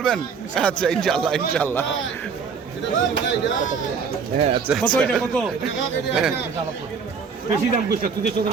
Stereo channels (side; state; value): left; quieter; 5.8 dB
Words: আচ্ছা ইনশাল্লাহ ইনশাল্লাহ। হ্যাঁ আচ্ছা কত এটা কত? বেশি দাম কইছ তুই তো দাম